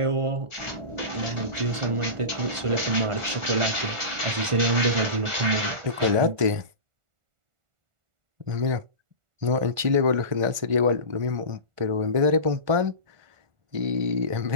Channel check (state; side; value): late; left; 1.5 ms